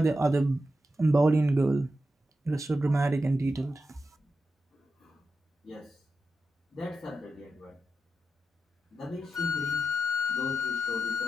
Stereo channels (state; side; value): normal; both; correlation 0.89